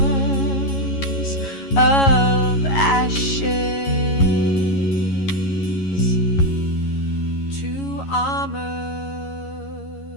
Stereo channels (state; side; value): late; right; 11 ms